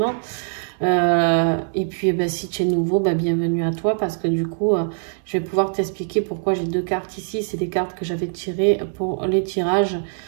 Et puis si tu es nouveau, bienvenue à toi, parce que du coup je vais pouvoir t'expliquer pourquoi j'ai deux cartes ici. C'est des cartes que j'avais tirées pour les tirages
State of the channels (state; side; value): silent; left; digital silence